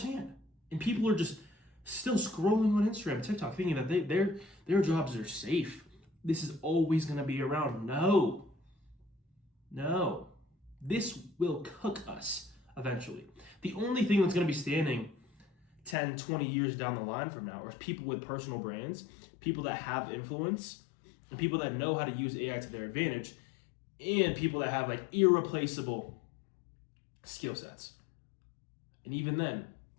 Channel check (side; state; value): right; drops out; at 16.0 s